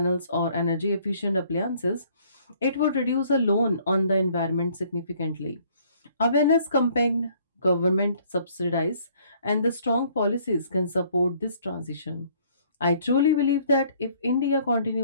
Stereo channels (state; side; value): inverted; both; correlation -0.61